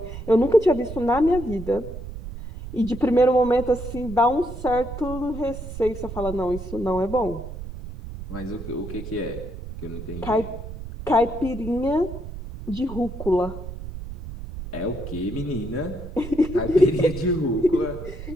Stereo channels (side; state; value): right; noise; rumble, 10 dB below the sound